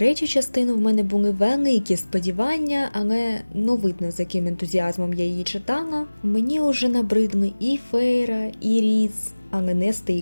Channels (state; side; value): inverted; both; correlation -1.00